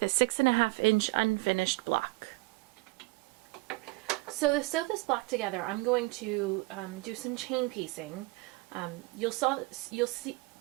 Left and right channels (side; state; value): left; quieter; 23.5 dB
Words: a 6.5 inch unfinished block. So to sew this block together, I'm going to do some chain piecing. You'll see